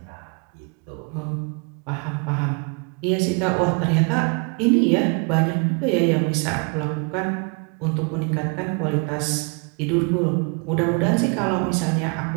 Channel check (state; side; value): quieter; left; 33.9 dB